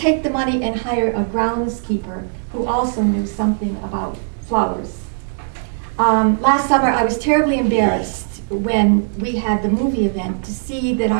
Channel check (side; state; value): left; silent; digital silence